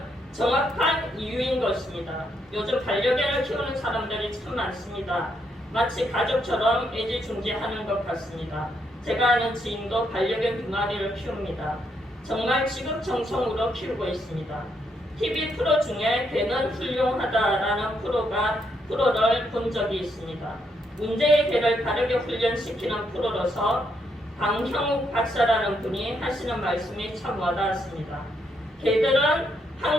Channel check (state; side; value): normal; both; correlation 0.76